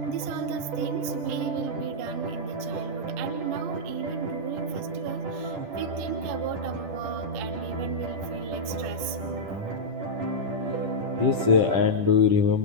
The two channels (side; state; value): left; late; 10 ms